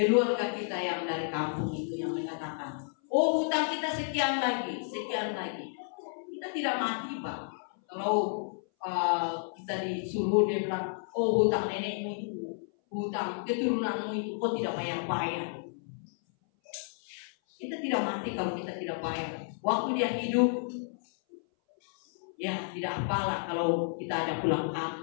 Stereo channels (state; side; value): silent; right; 57 dB below the other